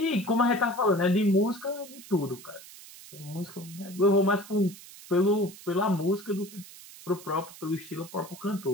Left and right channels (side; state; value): right; noise; hiss, 18 dB below the sound